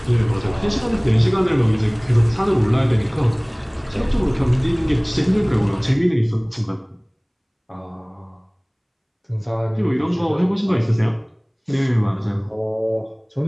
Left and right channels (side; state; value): both; identical; correlation 1.00